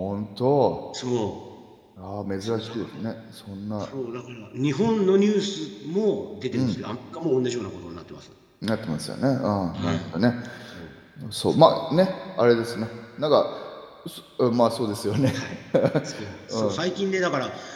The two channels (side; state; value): both; identical; correlation 1.00